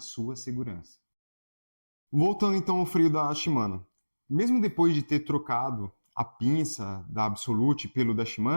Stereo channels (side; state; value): both; inverted; correlation -1.00